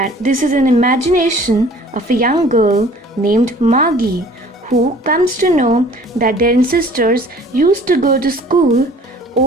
this is an imagination of a young girl named Margie, who comes to know that their ancestors used to go to school.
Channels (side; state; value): both; normal; correlation 0.51